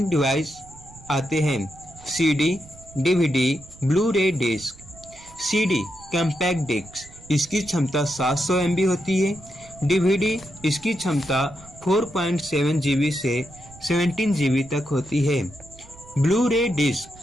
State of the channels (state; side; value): noise; right; rumble, 22 dB below the sound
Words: डिवाइस आते हैं, CD, DVD, Blu ray disc. CD compact disc, इसकी क्षमता 700 MB होती है। DVD, इसकी क्षमता 4.7 GB से 17 GB तक होती है। ब्लू-रे डिस्क,